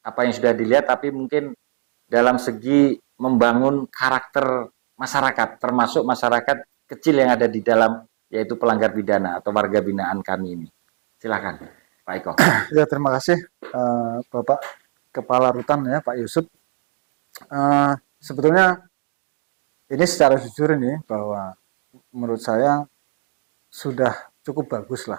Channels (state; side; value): silent; left; digital silence